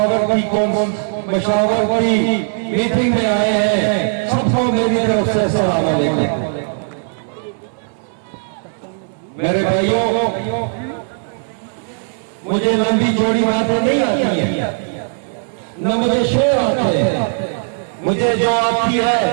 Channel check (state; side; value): silent; left; digital silence